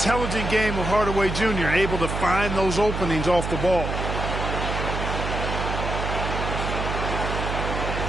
game of Hardaway Jr. able to find those openings off the ball.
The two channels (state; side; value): noise; right; hum, 3 dB below the sound